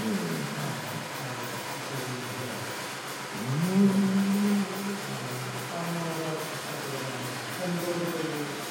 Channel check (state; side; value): identical; both; correlation 1.00